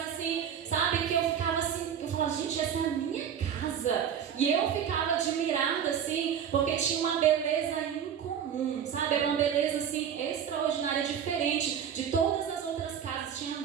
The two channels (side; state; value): left; quieter; 8.5 dB